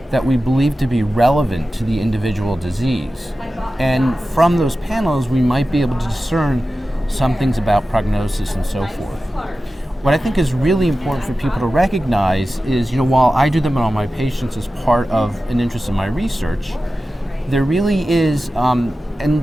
that we believe to be relevant to the individual disease. And from those panels, we might be able to discern some things about prognosis and so forth. What I think is really important for people to recognize is, while I do them on all my patients as part of an interest in my research, there really is, and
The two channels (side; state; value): both; normal; correlation 0.94